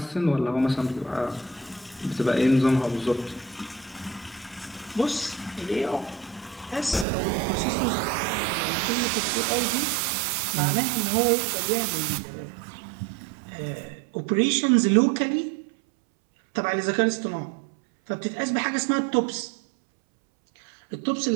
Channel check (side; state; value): left; drops out; at 7.1 s